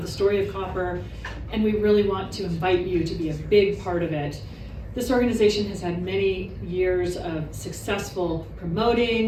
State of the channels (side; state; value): both; identical; correlation 1.00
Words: the story of COPPER, and we really want to invite you to be a big part of it. This organization has had many years of successful